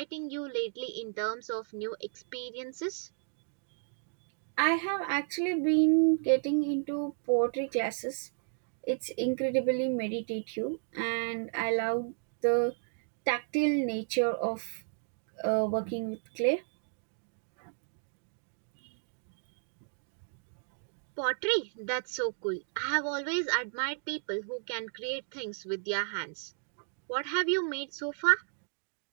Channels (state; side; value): silent; left; digital silence